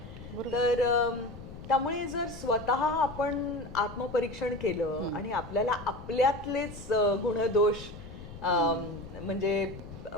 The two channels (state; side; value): noise; left; rumble, 13 dB below the sound